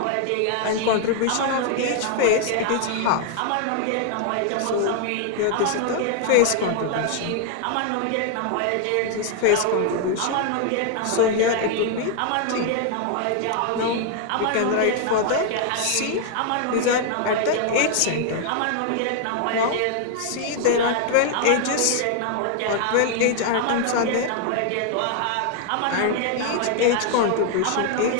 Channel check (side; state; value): both; different; correlation 0.00